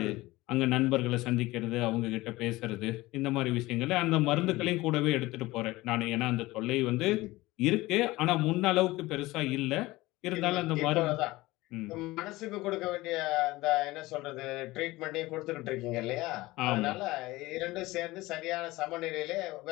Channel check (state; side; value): quieter; right; 19.5 dB